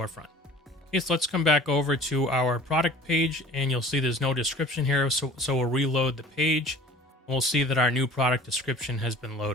Okay, so let's come back over to our product page, and you'll see there's no description here, so we'll reload the page, and we'll see that our new product description has been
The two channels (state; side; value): normal; both; correlation 0.46